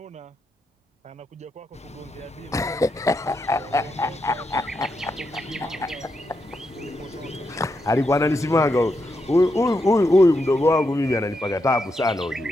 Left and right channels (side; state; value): both; normal; correlation 0.83